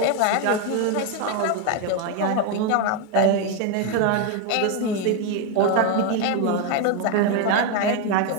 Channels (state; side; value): different; both; correlation 0.02